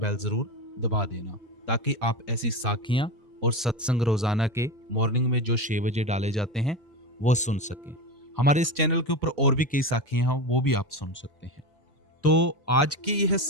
जरूर दबा देना, ताकि आप ऐसी साखियां और सत्संग रोजाना के मॉर्निंग में जो 6 बजे डाले जाते हैं वो सुन सकें। हमारे इस चैनल के ऊपर और भी कई साखियां हैं, वो भी आप सुन सकते हैं। तो आज की यह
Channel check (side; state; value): both; normal; correlation 0.20